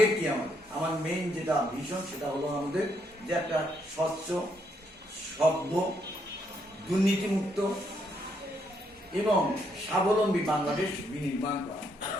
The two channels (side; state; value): both; normal; correlation 0.74